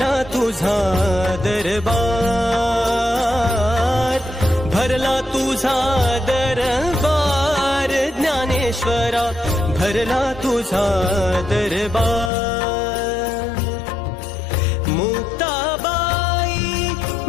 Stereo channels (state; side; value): drops out; right; at 12.3 s